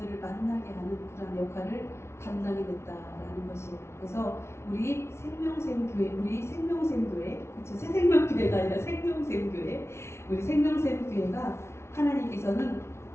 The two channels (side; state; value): right; late; 0.13 ms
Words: 만나게 하는 그런 역할을 담당이 됐다라는 것이에요. 그래서 우리 생명샘교회, 그렇죠? 새생명교회가 아니라 생명샘교회, 우리 생명샘교회가 하나님께서는